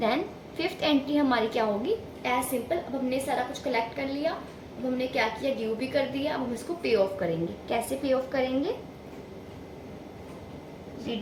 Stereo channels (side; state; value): both; identical; correlation 1.00